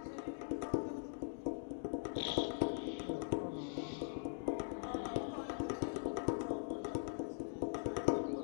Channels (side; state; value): right; silent; digital silence